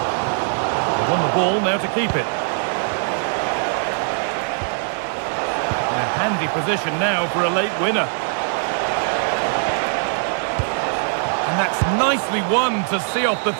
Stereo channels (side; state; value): left; silent; digital silence